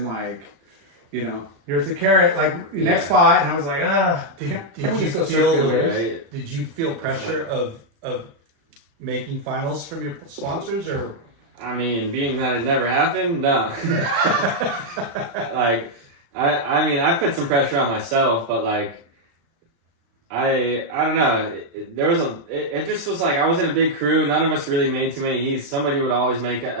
like, here's the carrot, like next spot, and I was like, damn. Did you feel pressure of making finals from your sponsors, or? I mean, being that it never happened, no. Like, I mean, I put some pressure on myself, but like, I don't know. It just was like I was in a big crew. None of us really made too many heats. Somebody would always make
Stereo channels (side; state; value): left; late; 35 ms